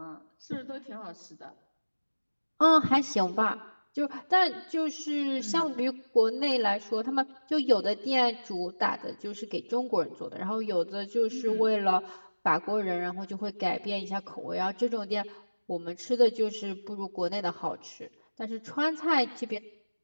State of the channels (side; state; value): both; inverted; correlation -1.00